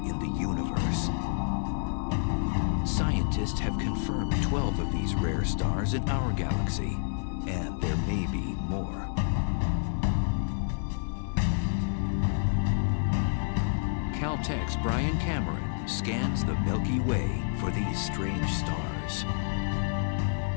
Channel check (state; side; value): silent; right; 59 dB below the other